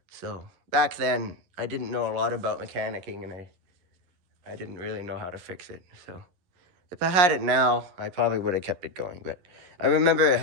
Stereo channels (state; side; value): late; left; 11 ms